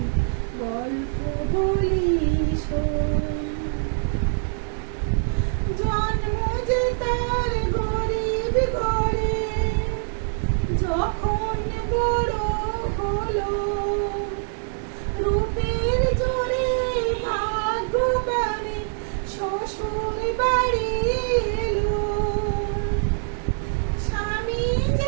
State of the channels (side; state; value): left; silent; 62 dB below the other